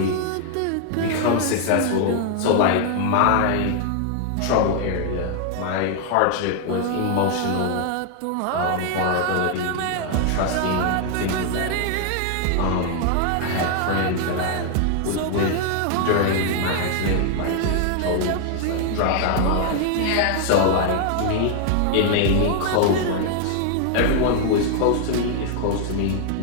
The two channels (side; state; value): both; different; correlation 0.00